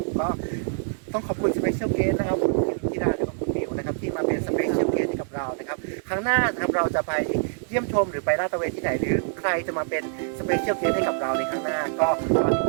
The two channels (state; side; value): silent; left; digital silence